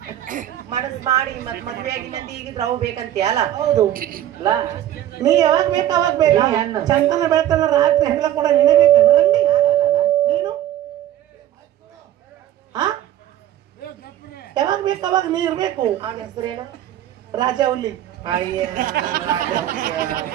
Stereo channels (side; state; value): left; quieter; 12.3 dB